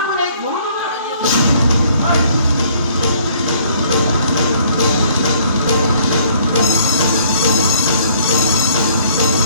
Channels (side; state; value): both; inverted; correlation -0.60